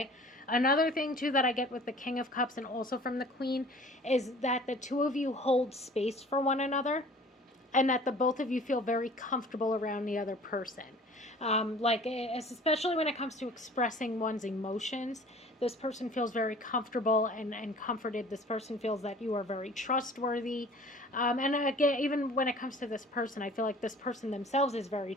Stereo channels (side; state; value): both; normal; correlation 0.48